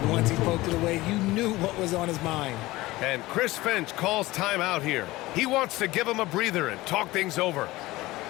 once he poked it away, you knew what was on his mind. And Chris Finch calls timeout here. He wants to give him a breather and talk things over.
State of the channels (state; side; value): quieter; right; 19.0 dB